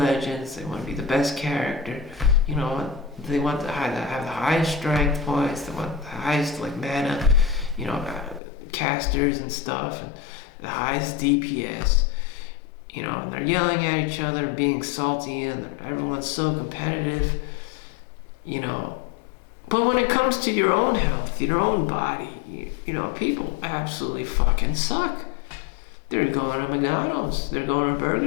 They want to be the best character. They want to have the highest strength points. They want the highest mana, casters and stuff, and the highest DPS. And they're yelling at each other and being salty, and everyone's so competitive. But when it comes to your own health, your own body, people absolutely fucking suck. They're going to McDonald's, they're going to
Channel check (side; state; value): right; drops out; at 8.4 s